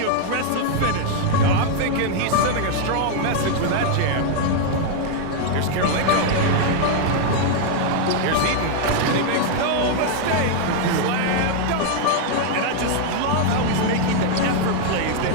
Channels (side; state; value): both; different; correlation 0.00